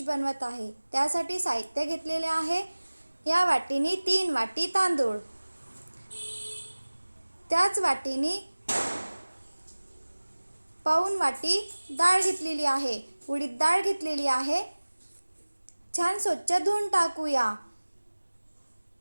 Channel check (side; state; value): both; inverted; correlation -1.00